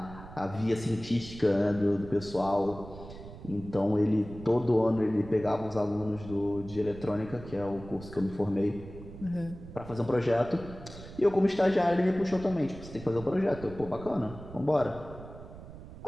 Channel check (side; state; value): right; noise; rumble, 15 dB below the sound